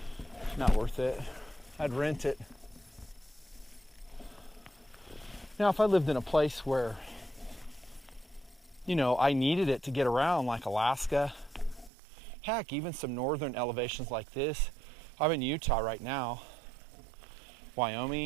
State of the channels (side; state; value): left; drops out; at 11.9 s